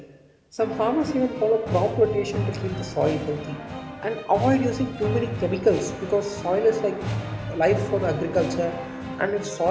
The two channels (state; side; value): identical; both; correlation 1.00